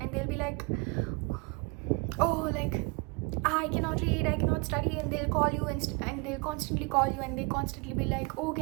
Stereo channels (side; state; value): left; quieter; 28.8 dB